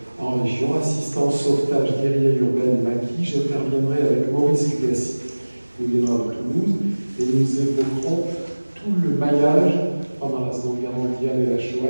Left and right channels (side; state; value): both; inverted; correlation -1.00